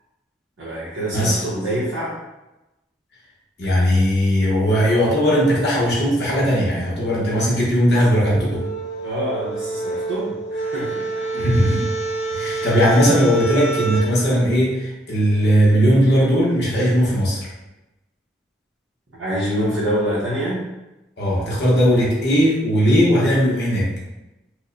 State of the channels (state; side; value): normal; both; correlation 0.71